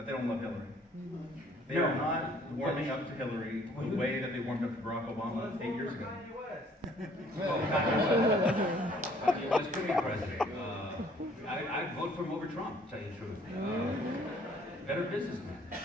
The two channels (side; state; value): both; normal; correlation 0.59